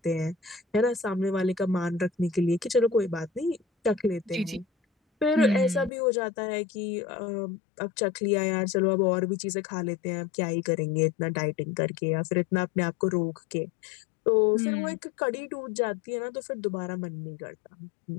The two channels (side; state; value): right; drops out; at 5.9 s